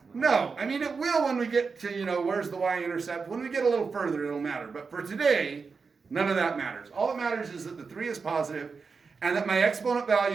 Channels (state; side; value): quieter; left; 5.0 dB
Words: No. I mean, it will when we get to, where's the y-intercept? When we get a little further, it'll matter. But for today, none of that matters. All that matters is that the 3 is positive and that my exponent